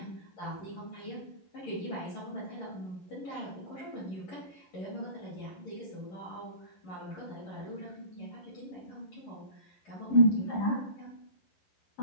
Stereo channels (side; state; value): right; late; 11 ms